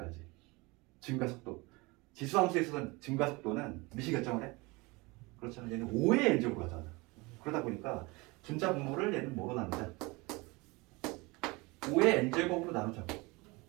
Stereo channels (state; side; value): quieter; left; 24.9 dB